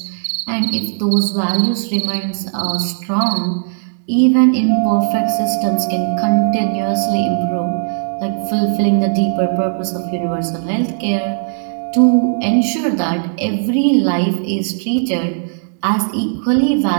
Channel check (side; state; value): left; silent; 68 dB below the other